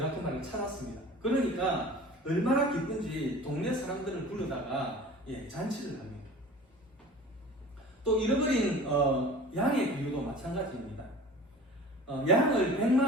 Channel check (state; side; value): normal; both; correlation 0.41